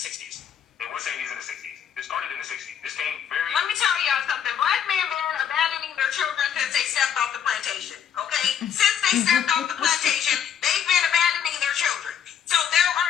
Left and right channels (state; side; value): quieter; right; 8.5 dB